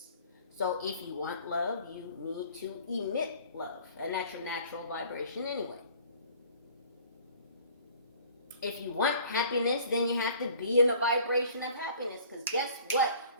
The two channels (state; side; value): inverted; both; correlation -0.51